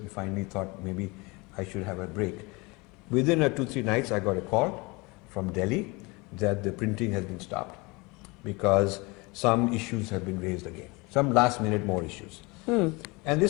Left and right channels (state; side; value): quieter; right; 25.9 dB